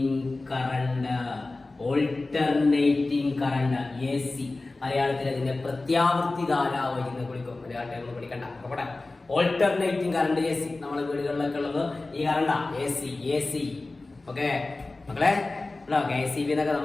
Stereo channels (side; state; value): right; quieter; 3.2 dB